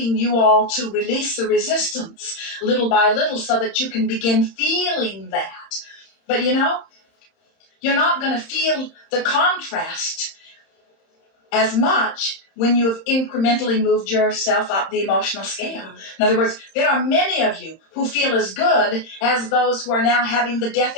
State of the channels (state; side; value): late; right; 31 ms